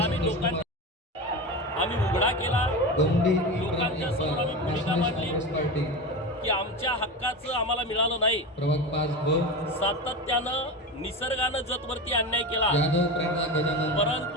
आम्ही उघडा केला. लोकांच्या समोर आम्ही भूमिका मांडली की आमच्या हक्काचं आम्हाला मिळालं नाही. सातत्यानं निसर्गानं जतवरती अन्याय केला,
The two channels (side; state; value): both; normal; correlation 0.23